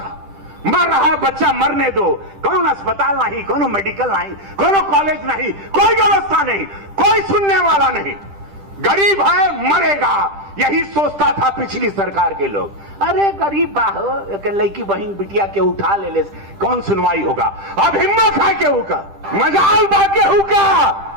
मर रहा है बच्चा, मरने दो। कौन अस्पताल नहीं, कोनो मेडिकल नहीं, कोनो कॉलेज नहीं, कोई व्यवस्था नहीं, कोई सुनने वाला नहीं। गरीब है मरेगा, यही सोचता था पिछली सरकार के लोग। अरे गरीब बाहो लड़की बहन बिटिया के उठा ले कौन सुनवाई होगा। अब हिम्मत है केहू का, मजाल बा केहू का।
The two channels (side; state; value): left; late; 10 ms